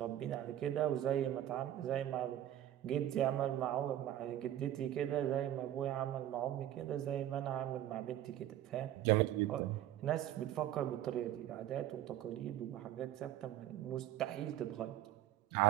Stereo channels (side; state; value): left; quieter; 12.5 dB